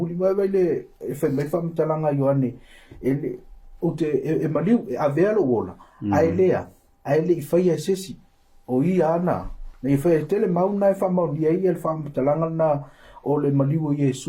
mai le e fa mai fa mtalanga Ioane ele o te e maliu a velo wola ai le i fai e sesi o i ana na i fai tele mauna e fa mauni ai el fa mtalanga na o le maliu o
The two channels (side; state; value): both; identical; correlation 1.00